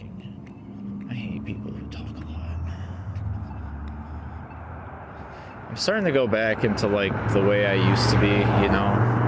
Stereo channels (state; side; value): identical; both; correlation 1.00